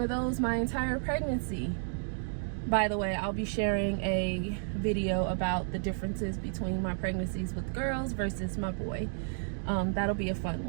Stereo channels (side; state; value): left; silent; digital silence